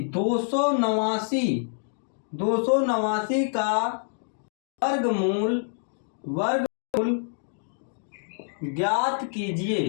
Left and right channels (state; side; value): silent; right; digital silence